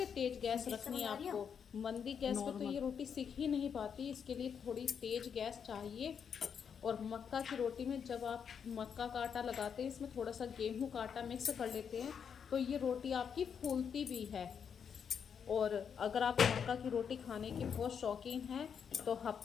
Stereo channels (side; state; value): right; quieter; 7.2 dB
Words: तेज गैस रखनी है आपको। मंदी गैस पे तो ये रोटी सीख ही नहीं पाती, इसके लिए थोड़ी तेज गैस चाहिए। और मक्का की रोटी में जब आप मक्का का आटा लगाते हैं, इसमें थोड़ा सा गेहूं का आटा मिक्स कर लेते हैं तो ये रोटी आपकी फूलती भी है। और अगर आप मक्का की रोटी खाने के बहुत शौकीन हैं तो